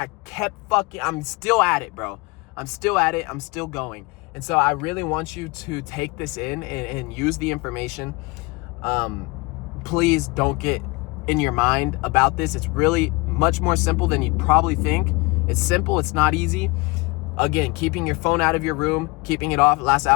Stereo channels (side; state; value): right; quieter; 25.5 dB